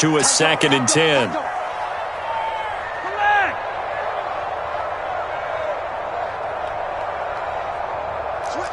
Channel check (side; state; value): both; identical; correlation 1.00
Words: a 2nd and 10.